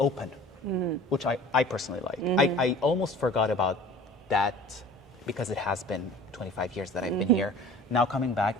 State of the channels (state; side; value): normal; both; correlation 0.44